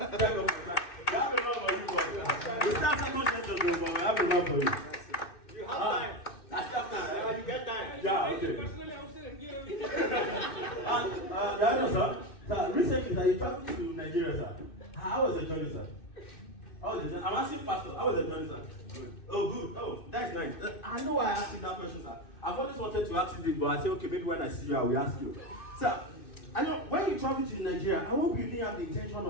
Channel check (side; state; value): right; late; 2.6 ms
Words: get up for that. You have enough for you, boy. You start second session, but I have enough for you. You have time. I still have time. You get time. Yeah, okay. Sir, recently, sir, you traveled to Nigeria, sir. How was the journey, sir? I'm asking Pastor, how was the journey, sir? Good. Oh, good. Oh, that's nice. I know why I asked you that question, sir. I've always wanted to ask you this, but I said, okay, maybe when I see you, I will ask you. Sir, I know when you travel to Nigeria, I hope you didn't have the intention